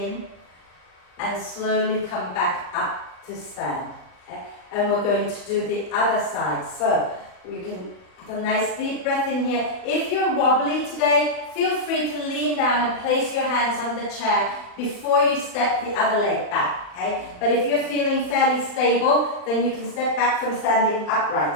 And slowly come back up to stand. Okay? And we're going to do the other side. So you can have a nice deep breath in here. If you're wobbly today, feel free to lean down and place your hands on the chair before you step the other leg back. Okay? But if you're feeling fairly stable, then you can step back from standing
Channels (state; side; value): late; right; 39 ms